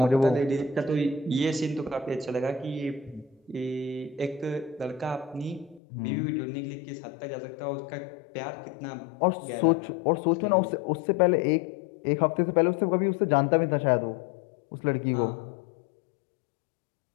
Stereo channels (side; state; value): right; drops out; at 5.8 s